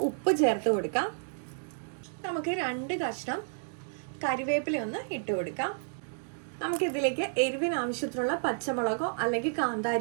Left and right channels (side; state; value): left; silent; digital silence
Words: ഉപ്പ് ചേർത്ത് കൊടുക്കാം. നമുക്ക് 2 കഷ്ണം കറിവേപ്പില ഒന്ന് ഇട്ട് കൊടുക്കാം. നമുക്കിതിലേക്ക് എരിവിന് ആവശ്യത്തിനുള്ള പച്ചമുളകോ അല്ലെങ്കിൽ